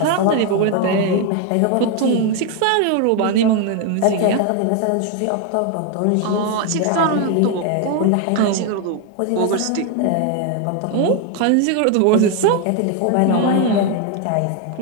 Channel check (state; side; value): different; both; correlation 0.01